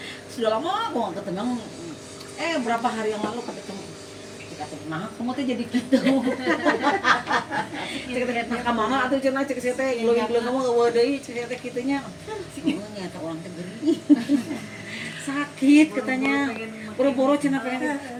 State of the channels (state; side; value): identical; both; correlation 1.00